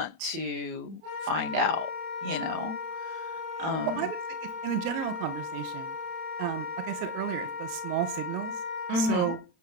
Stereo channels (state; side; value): late; left; 31 ms